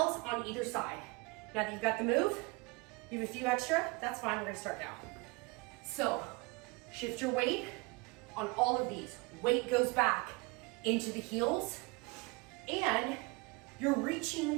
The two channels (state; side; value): quieter; left; 27.2 dB